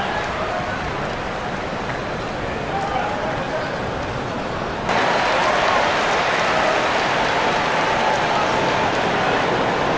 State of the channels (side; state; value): both; identical; correlation 1.00